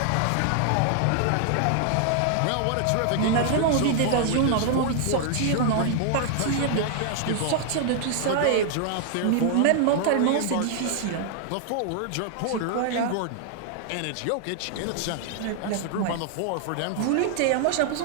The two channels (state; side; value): different; both; correlation 0.00